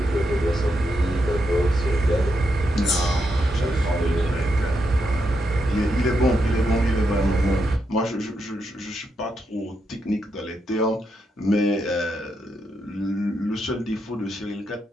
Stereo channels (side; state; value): both; normal; correlation 0.82